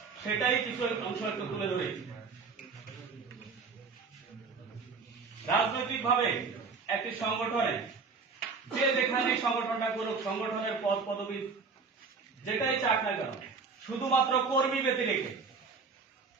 সেটাই কিছু অংশ একটু তুলে ধরেছি। রাজনৈতিক ভাবে একটি সংগঠনে যে যেখানে সংগঠনটা করুক, সংগঠনের পদ পদবি যেটাই চাক না কেন, শুধুমাত্র কর্মী ব্যতি রেখে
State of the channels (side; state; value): left; quieter; 4.8 dB